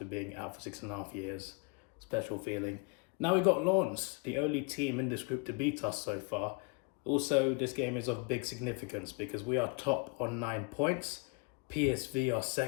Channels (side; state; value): right; quieter; 32.3 dB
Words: being out for 6.5 years. Special feeling. Now we got Lens, the only team in this group to beat us so far. Also, this game is of big significance because we are top on 9 points. PSV are